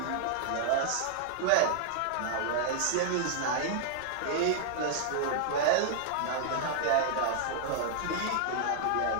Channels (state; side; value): different; both; correlation -0.01